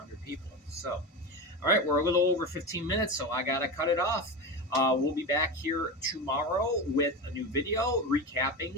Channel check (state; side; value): normal; both; correlation 0.22